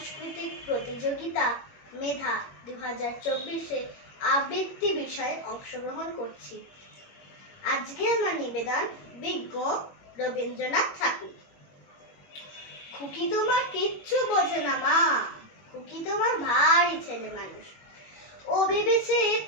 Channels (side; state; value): right; late; 21 ms